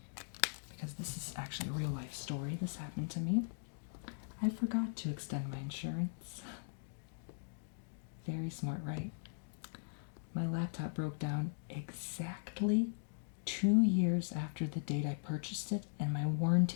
because this is actually a real life story. This happened to me. I forgot to extend my insurance. Very smart, right? My laptop broke down exactly 2 years after the date I purchased it, and my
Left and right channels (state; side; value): silent; right; digital silence